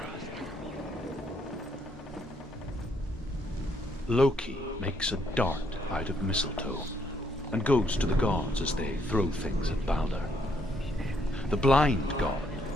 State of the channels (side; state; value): both; normal; correlation 0.71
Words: Loki makes a dart out of mistletoe and goes to the gods as they throw things at Balder. The blind god,